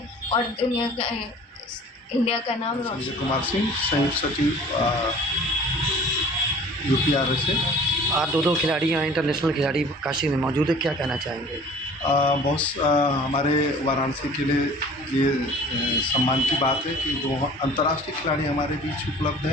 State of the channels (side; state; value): both; normal; correlation 0.47